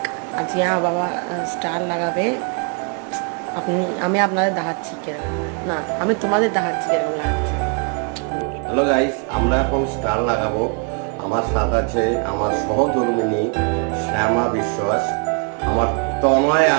আজ यहाँ বাবা স্টার লাগাবে। আমি আপনাদের দেখাচ্ছি কিরকম, না আমি তোমাদের দেখাচ্ছি কিরকম লাগাচ্ছি। হ্যালো গাইস, আমরা এখন স্টার লাগাবো। আমার সাথে আছে আমার সহধর্মিনী শ্যামা বিশ্বাস, আমার তনয়া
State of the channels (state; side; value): quieter; left; 38.0 dB